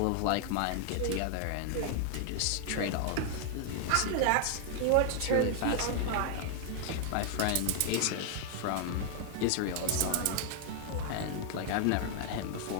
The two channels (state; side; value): different; both; correlation 0.00